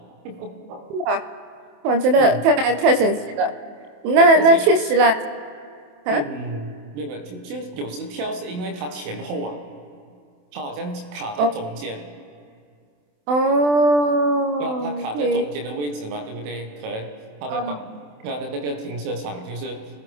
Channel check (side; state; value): left; late; 27 ms